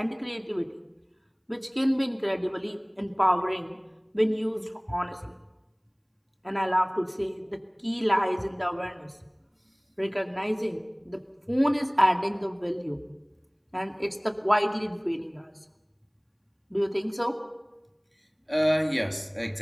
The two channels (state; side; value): identical; both; correlation 1.00